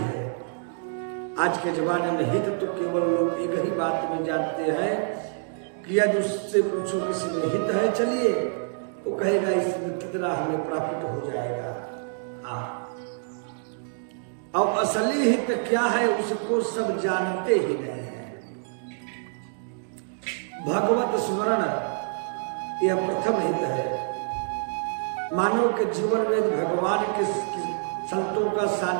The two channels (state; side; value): silent; left; digital silence